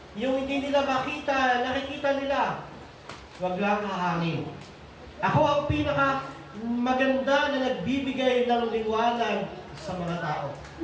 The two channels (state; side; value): identical; both; correlation 1.00